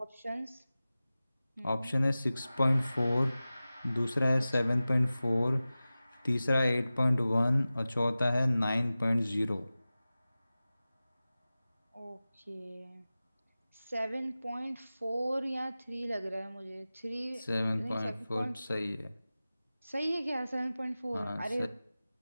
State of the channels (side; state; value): both; inverted; correlation -0.96